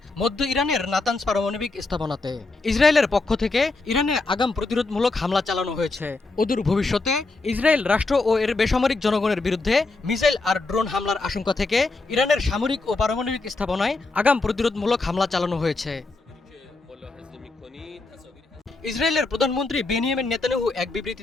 মধ্য ইরানের নাতানজ পারমাণবিক স্থাপনাতে। ইসরায়েলের পক্ষ থেকে ইরানে আগাম প্রতিরোধমূলক হামলা চালানো হয়েছে। অদূর ভবিষ্যতে ইসরায়েল রাষ্ট্র ও এর বেসামরিক জনগণের বিরুদ্ধে মিসাইল আর ড্রোন হামলার আশঙ্কা থেকে ইরানের সামরিক ও পারমাণবিক স্থাপনায় আগাম প্রতিরোধমূলক হামলা চালানো হয়েছে। ইসরায়েলের প্রধানমন্ত্রী বেনিয়ামিন নেতানিয়াহু এক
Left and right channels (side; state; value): right; quieter; 3.5 dB